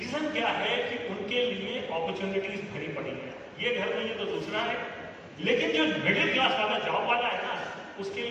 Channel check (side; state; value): both; identical; correlation 1.00